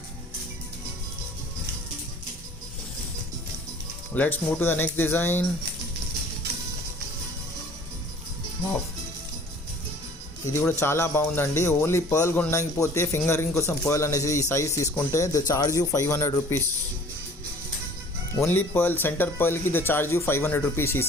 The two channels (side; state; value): both; normal; correlation 0.50